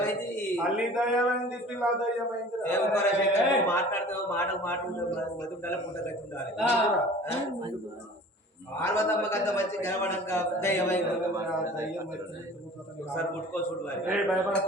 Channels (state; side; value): normal; both; correlation 0.45